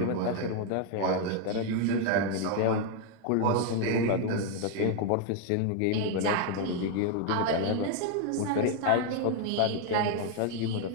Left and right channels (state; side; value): different; both; correlation 0.00